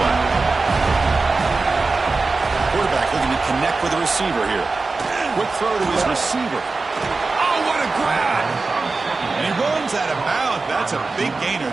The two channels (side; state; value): left; quieter; 3.8 dB